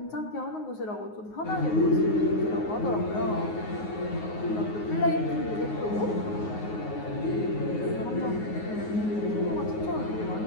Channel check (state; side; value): late; right; 9.5 ms